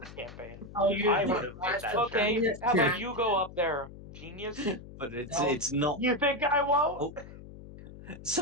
campaign. I'll use I my would have made that Okay, check. how about you go up there? Genius. but No. it's not. You think I won't? Oh,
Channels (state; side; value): noise; left; hum, 16 dB below the sound